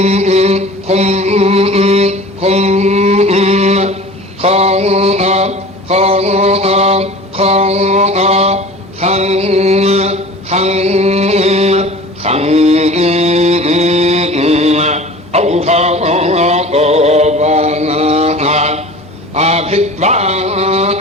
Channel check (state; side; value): normal; both; correlation 0.40